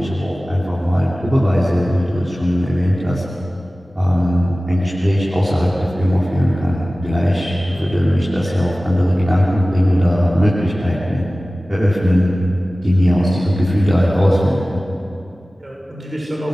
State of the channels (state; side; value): normal; both; correlation 0.97